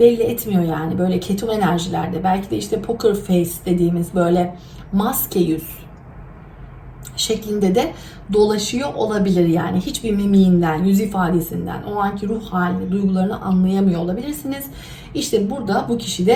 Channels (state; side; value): identical; both; correlation 1.00